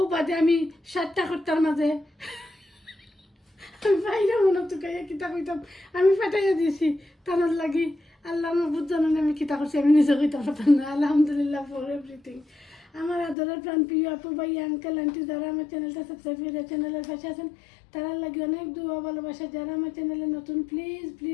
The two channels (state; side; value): drops out; right; at 13.4 s